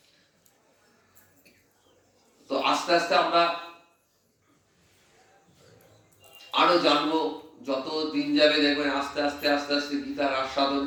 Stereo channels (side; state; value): both; identical; correlation 1.00